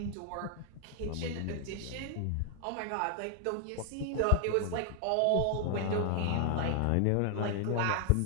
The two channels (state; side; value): different; both; correlation 0.00